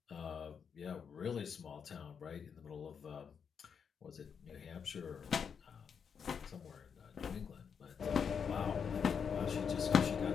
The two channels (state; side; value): quieter; right; 6.8 dB